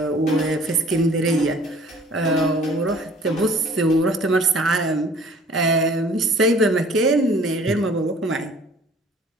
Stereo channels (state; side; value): normal; both; correlation 0.53